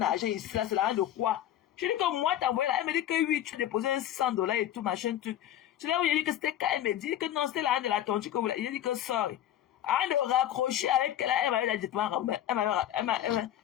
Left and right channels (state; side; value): quieter; right; 11.8 dB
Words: ici, là, c'est l'argent de quoi? Je dis que moi, t'as envoyé là. Elle me dit que oui, tu as déposé $600 et tout, machin, tout. C'est là où il a dit que c'était quand elle me dit que non, c'était l'argent de la tontu que vous l'avez. Il a dit que sorry. Avant de raccrocher avec elle, elle m'avait dit,